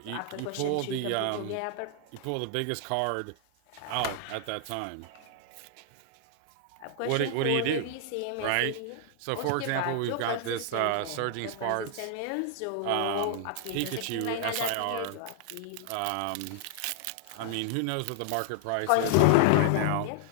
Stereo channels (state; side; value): different; both; correlation 0.00